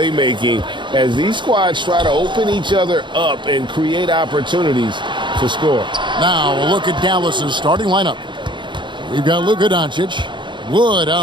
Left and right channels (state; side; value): late; left; 0.23 ms